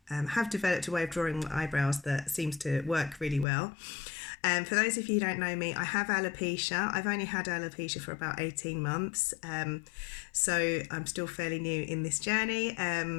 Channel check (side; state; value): right; drops out; at 3.5 s